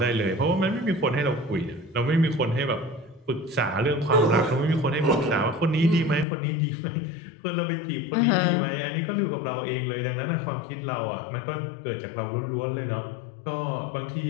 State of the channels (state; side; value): drops out; right; at 6.2 s